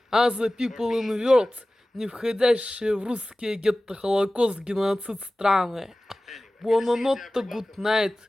other people in the world, не входящие в русские гетто-холокост-геноцид страны. Buonanotte, good night.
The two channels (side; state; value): both; normal; correlation 0.97